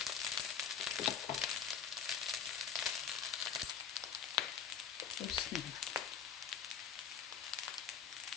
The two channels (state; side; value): quieter; right; 7.2 dB